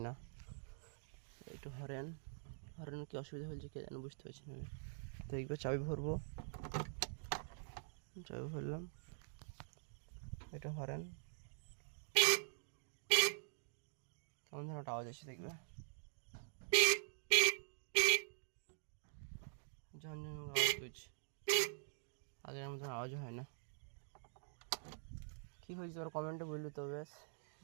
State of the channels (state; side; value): silent; left; digital silence